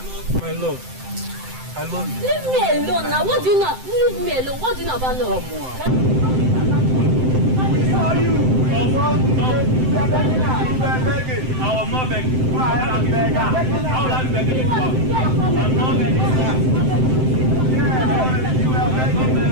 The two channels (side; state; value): left; late; 7.8 ms